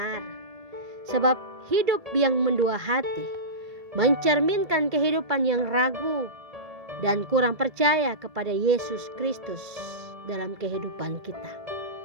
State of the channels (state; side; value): late; left; 1.8 ms